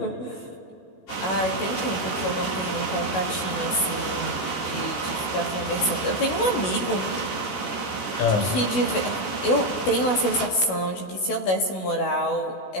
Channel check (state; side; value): late; right; 16 ms